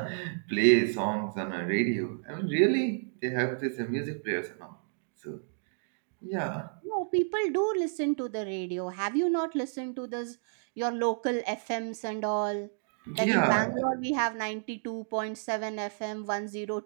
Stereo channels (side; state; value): left; silent; digital silence